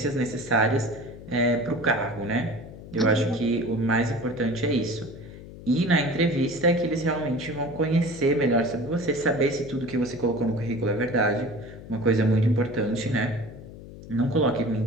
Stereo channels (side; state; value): left; noise; hum, 15 dB below the sound